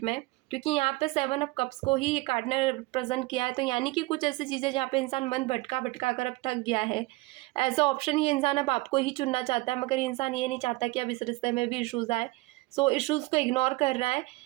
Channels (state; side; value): quieter; left; 22.1 dB